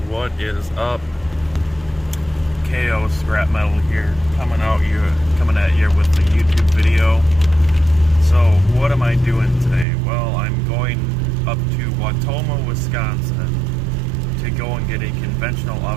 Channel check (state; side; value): drops out; left; at 9.9 s